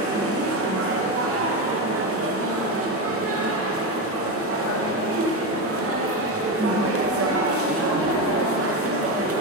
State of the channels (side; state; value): both; normal; correlation 0.14